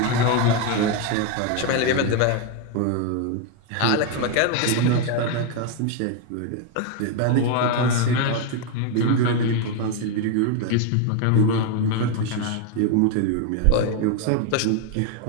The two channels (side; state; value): both; different; correlation 0.01